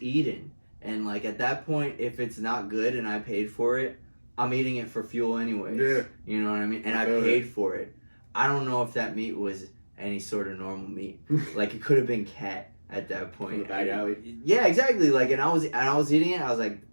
eating. And, like, at that point, if it's not good and I paid for it, I'm eating it for fuel anyway. Yeah. You know what I mean? And I paid for it. I don't know if that meat was any sort of normal meat. Like, it could have been cat at that point. From the back alley? Yeah, exactly. Like, and I was eating it. I was like,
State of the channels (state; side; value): inverted; both; correlation -1.00